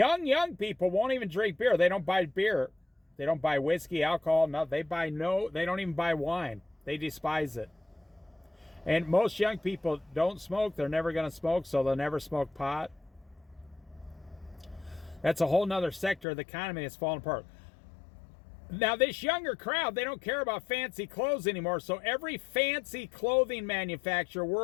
people won't even drink beer. They don't buy beer. They don't buy whiskey, alcohol, no. They don't even buy wine. They despise it. And most young people don't smoke. They're never going to smoke, so they'll never smoke pot. That's a whole nother sector of the economy that's falling apart. Now, this younger crowd, they don't care about fancy clothes anymore, so every fancy clothing manufacturer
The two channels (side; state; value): right; drops out; at 16.2 s